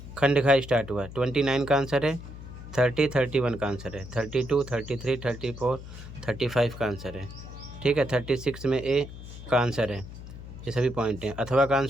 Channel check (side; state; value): left; noise; hum, 13 dB below the sound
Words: खंड घा स्टार्ट हुआ, 29 का आंसर है, 30, 31 का आंसर है, 32, 33, 34, 35 का आंसर है। ठीक है, 36 में ए का आंसर है, ये सभी पॉइंट हैं। अथवा का